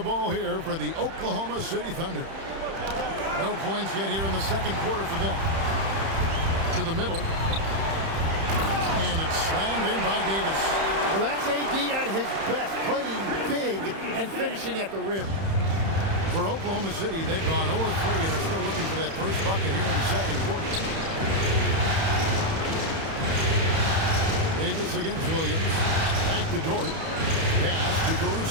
here for the Oklahoma City Thunder. No points yet here in the second quarter for them. To the middle. And it's slammed in by Davis. Well, that's AD at his best, playing big and finishing at the rim. For Oklahoma City, they've gone 0-3 and are still looking for that first bucket here in the second quarter. Davis against Williams. Back to Dort. Pass to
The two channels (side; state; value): left; late; 31 ms